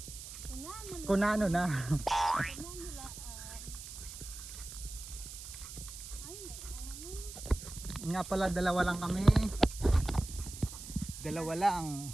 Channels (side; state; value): right; noise; hiss, 11 dB below the sound